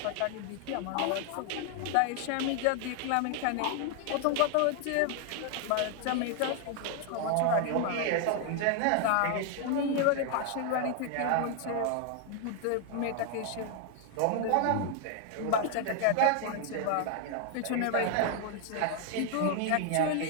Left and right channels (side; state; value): both; different; correlation 0.00